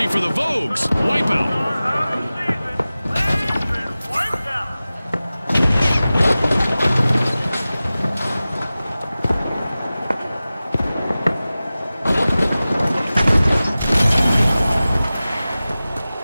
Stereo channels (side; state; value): both; inverted; correlation -0.96